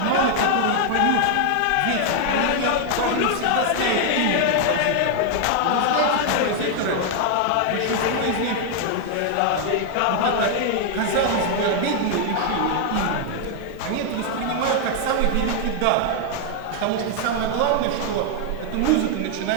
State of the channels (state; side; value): different; both; correlation 0.00